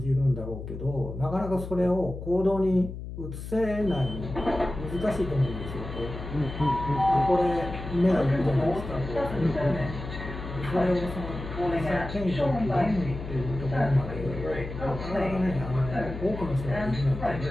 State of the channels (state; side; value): noise; left; hum, 9 dB below the sound